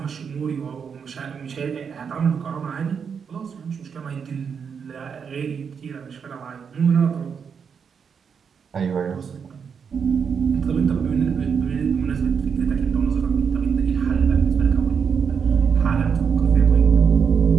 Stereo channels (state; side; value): quieter; left; 6.6 dB